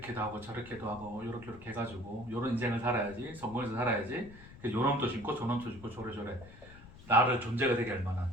하고 저렇게도 하고 이렇게 해가지고 이런 인생을 살아야지, 성공해서 살아야지. 요놈도 심고 저놈도 심고 저래저래 나를 존재가 되게 할 만한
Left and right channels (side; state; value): left; noise; rumble, 18 dB below the sound